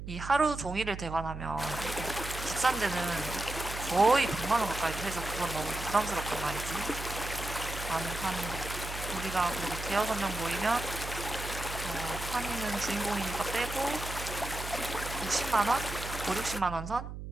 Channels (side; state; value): right; noise; hum, 8 dB below the sound